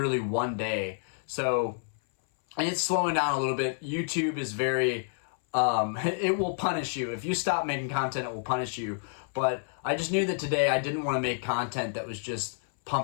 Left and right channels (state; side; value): silent; right; 58 dB below the other